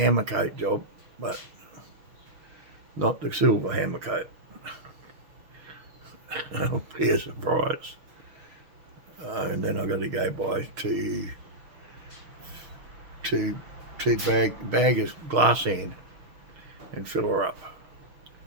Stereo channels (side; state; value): left; late; 6.4 ms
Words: coat job, but not the silver hammer coat. It'll be a surprise. And then I've got to go buy two bag of glass sand and fill her up